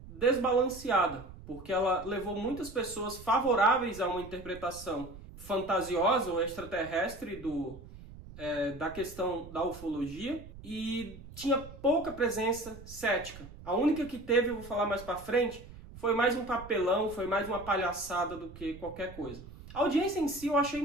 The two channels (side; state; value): right; noise; rumble, 16 dB below the sound